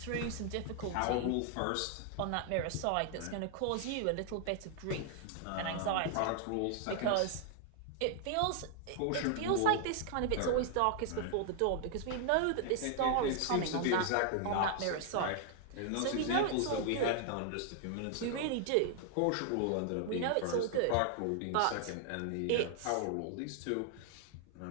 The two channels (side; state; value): both; different; correlation 0.00